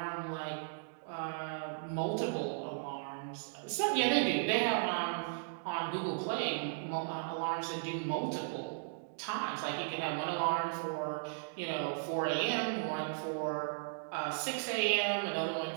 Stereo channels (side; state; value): left; silent; digital silence